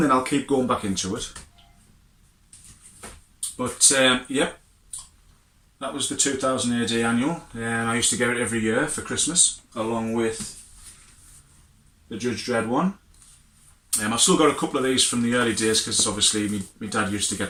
then I'll keep going back into it. But yep, that was the 2000 AD annual. I used to get it every year for Christmas, along with the Judge Dredd one. I've still got a couple of these from the early days, because obviously my dad used to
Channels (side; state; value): both; identical; correlation 1.00